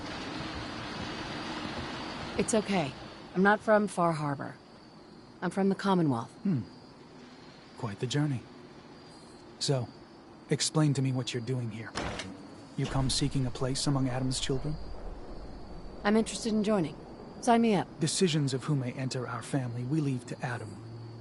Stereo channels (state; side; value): identical; both; correlation 1.00